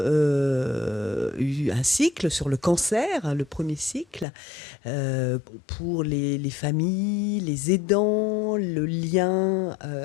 un cycle sur le cancer, le premier cycle, pour les familles, les aidants, le lien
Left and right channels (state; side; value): drops out; right; at 4.2 s